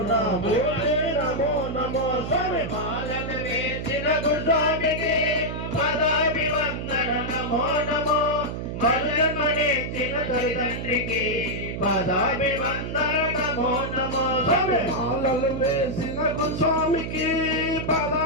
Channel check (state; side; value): noise; right; hum, 5 dB below the sound